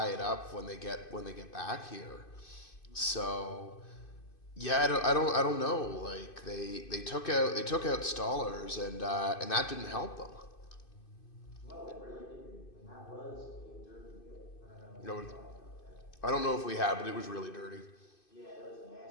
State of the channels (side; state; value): right; late; 2.5 ms